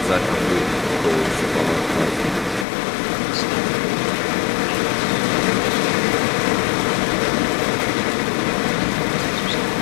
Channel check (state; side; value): drops out; right; at 2.7 s